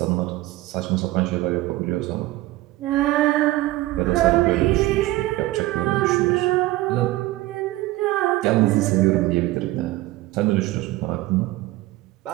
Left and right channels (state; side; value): quieter; left; 18.0 dB